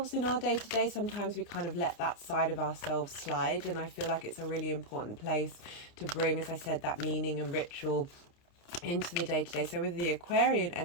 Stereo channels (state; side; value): late; right; 29 ms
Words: in our day-to-day. Sometimes we kind of let that side of ourselves slide, and I feel like it's a really important place to bring, as I said, that meaning and ritual into the day-to-day. So with the Aquarian